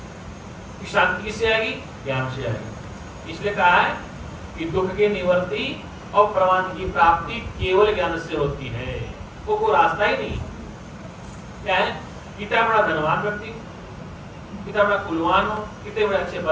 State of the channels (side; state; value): both; identical; correlation 1.00